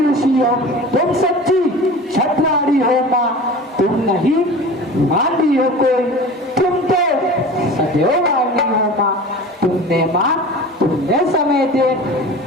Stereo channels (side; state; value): both; normal; correlation 0.37